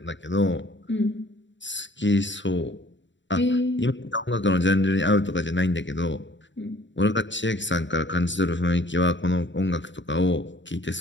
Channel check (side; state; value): right; late; 0.54 ms